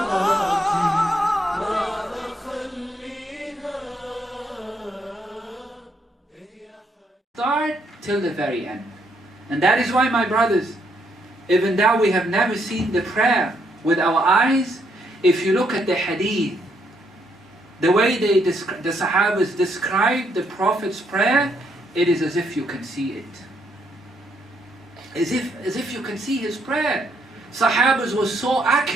ما أخليها. Start till the very end. And that is why, my brothers, even though we have never seen the prayer with our eyes, if you look at the hadith, the way the Sahabas describe the Prophet's prayer, it is as if you can see it. As if you can see his prayer. Sahabas was so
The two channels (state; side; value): normal; both; correlation 0.74